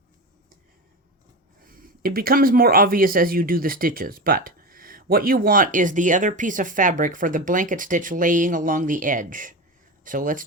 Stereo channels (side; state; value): both; normal; correlation 0.23